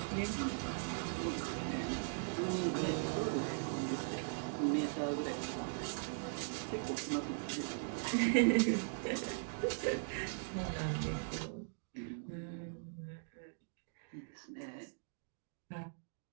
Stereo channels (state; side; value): silent; left; digital silence